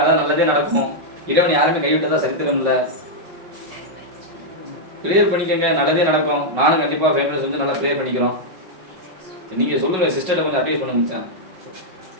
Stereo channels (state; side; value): late; left; 5.4 ms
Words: அதான் நல்லதே நடக்கும். இறைவன் யாருமே கைவிட்டதா சரித்திரம் இல்லை. ப்ரேயர் பண்ணிக்கங்க, நல்லதே நடக்கும். நானும் கண்டிப்பாக ஃபேமிலிஸ் வந்து நல்லா ப்ரேயர் பண்ணிக்கிறோம். நீங்கள் சொல்லுங்கள், சிஸ்டர்கிட்ட கொஞ்சம் அட்வைஸ் பண்ணுங்க மச்சான்.